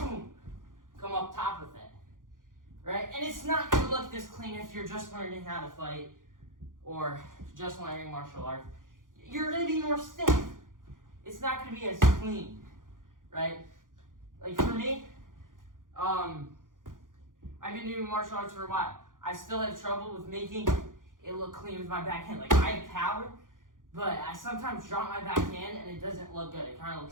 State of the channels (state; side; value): late; left; 0.89 ms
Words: Come up top with it. Right? And it's not gonna look this clean if you're just learning how to fight or just learning martial arts. You're gonna be more stiff. It's not gonna be as clean. Right? Like for me, I've been doing martial arts for a while. I still have trouble with making it look clean with my backhand. Like I have power, but I sometimes drop my backhand and it doesn't look good. It kind of